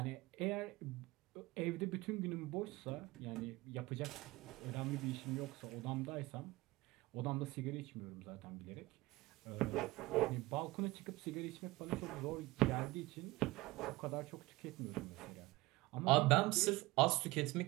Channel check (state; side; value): quieter; left; 20.5 dB